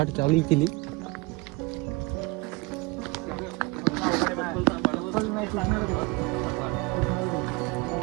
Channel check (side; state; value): left; quieter; 25.1 dB